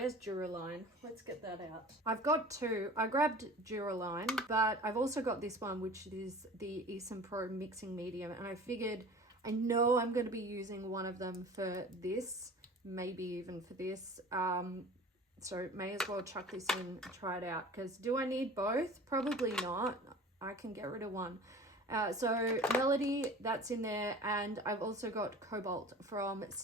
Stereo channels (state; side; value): normal; both; correlation 0.41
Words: Duraline? Let's get that out. I've got two. I grabbed Duraline, but I've also got this one, which is the Esom Pro Mixing Medium, and I figured, I know I'm going to be using one of them for this, maybe even for this, so may as well chuck this in and try it out, because do I need both? Probably not. I can get rid of one. So Melody, that's in there, and I've also got Cobalt from